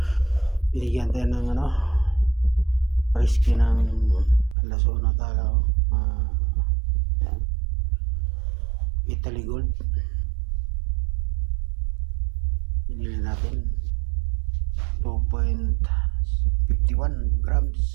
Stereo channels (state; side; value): drops out; left; at 4.5 s